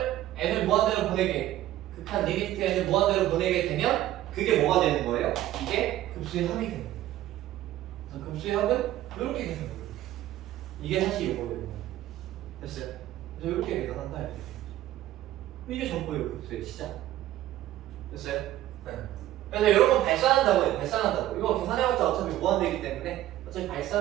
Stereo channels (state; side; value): quieter; left; 14.0 dB